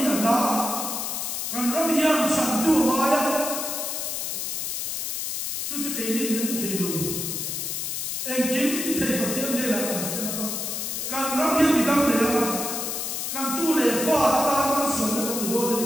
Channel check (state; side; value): noise; left; hiss, 3 dB below the sound